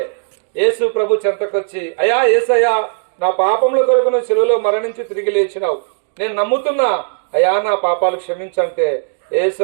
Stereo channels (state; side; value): silent; left; digital silence